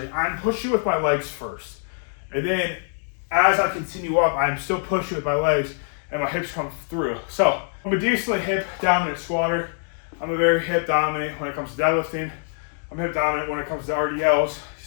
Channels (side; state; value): right; silent; digital silence